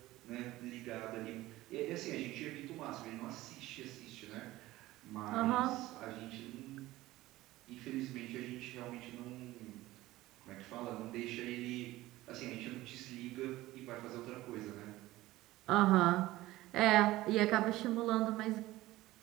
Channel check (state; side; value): quieter; left; 17.3 dB